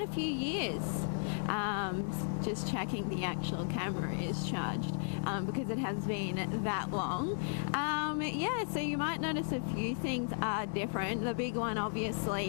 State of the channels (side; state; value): right; silent; 54 dB below the other